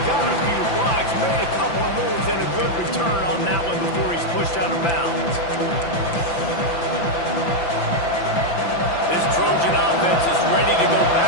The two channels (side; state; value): right; late; 5.9 ms